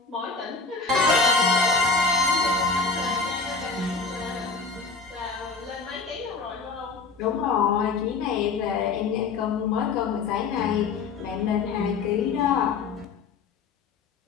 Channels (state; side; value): quieter; right; 4.4 dB